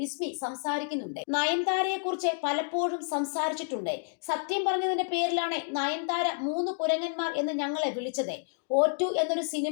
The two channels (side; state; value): right; silent; digital silence